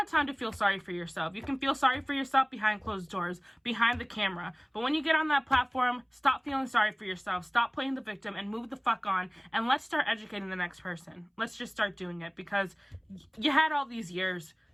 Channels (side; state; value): both; identical; correlation 1.00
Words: time to feel sorry for yourself. You can feel sorry for yourself behind closed doors, behind the camera. But when you get on that platform, stop feeling sorry for yourself. Stop playing the victim and move the fuck on. And let's start educating the next person. Let's just start doing it, because you had all these years.